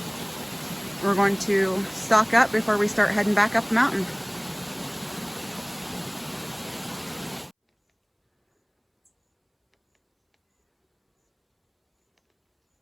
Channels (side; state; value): both; identical; correlation 1.00